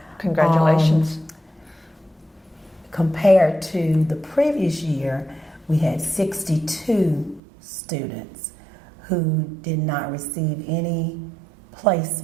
Congratulations. Compared to the previous year, we had 62 students who did not receive any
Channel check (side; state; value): left; drops out; at 7.4 s